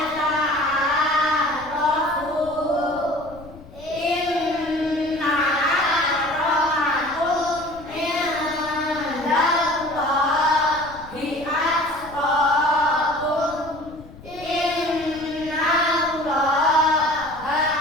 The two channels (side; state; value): left; noise; rumble, 19 dB below the sound